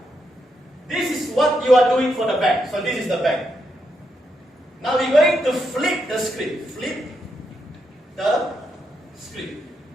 what you are doing for the bank. So this is the bank. Now we're going to flip the script. Flip the script.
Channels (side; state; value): both; normal; correlation 0.81